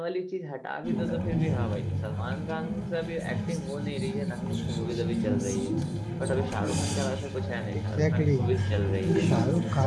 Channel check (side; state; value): both; identical; correlation 1.00